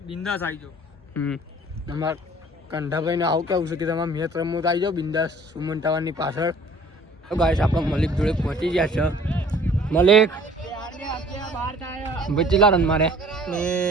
બિંદાસ આવી જાઓ. અમારા કંઠાભાઈને આવું કેવું છે કે તમારે મેચ રમવું તો આવી જાઓ બિંદાસ સુમન ટાવરની પાછળ. તો ગાઈસ આપણે મલિક જોડે પહોંચી ગયા છે. મલિક ભાઈ ચેલા રન મારે?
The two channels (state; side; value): normal; both; correlation 0.52